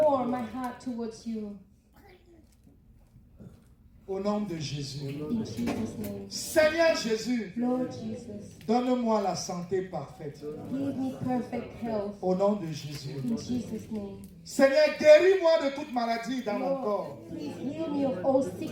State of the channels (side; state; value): both; identical; correlation 1.00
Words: my heart towards you. Au nom de Jésus. In Jesus' name. Seigneur Jésus, Lord Jesus, donne-moi la santé parfaite. give me perfect health. Au nom de Jésus. In Jesus' name. Seigneur, guéris-moi de toute maladie dans mon corps. Lord, please heal me of all